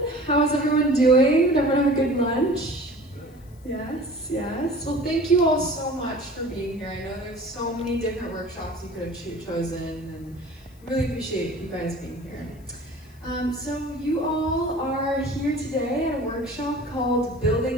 how is everyone doing? Did everyone have a good lunch? Yes, yes. Well, thank you all so much for being here. I know there's so many different workshops you could have chosen, and really appreciate you guys being here. So you all are here today at a workshop called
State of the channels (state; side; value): noise; left; hiss, 29 dB below the sound